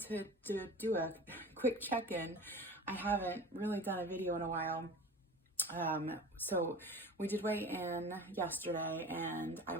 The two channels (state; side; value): normal; both; correlation 0.37